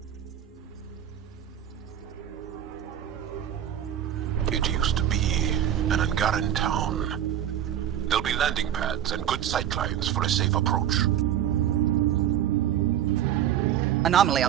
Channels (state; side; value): quieter; left; 10.5 dB